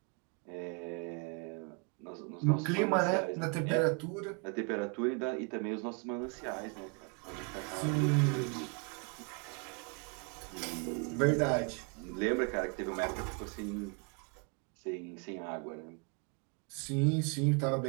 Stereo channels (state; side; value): quieter; left; 35.4 dB